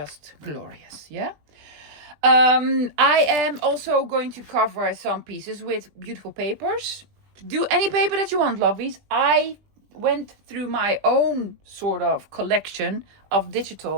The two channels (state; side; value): late; left; 20 ms